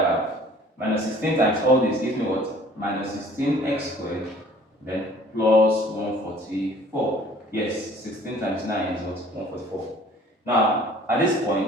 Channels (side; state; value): both; normal; correlation 0.52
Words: have? Minus 16 times all this gives me what? Minus 16x squared, then plus 144. Yes, 16 times 9 is what? 144. Now, at this